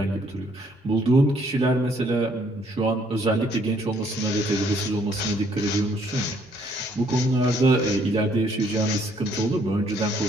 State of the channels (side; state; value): both; normal; correlation 0.66